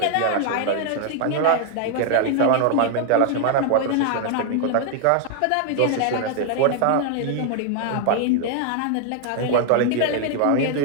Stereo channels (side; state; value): both; different; correlation 0.00